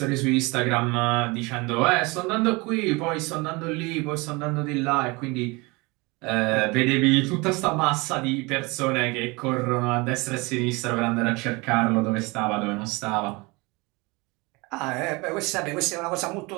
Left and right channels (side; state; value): left; quieter; 25.6 dB